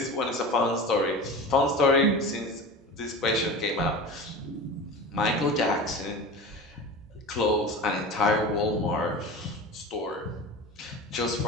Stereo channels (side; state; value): both; normal; correlation 0.31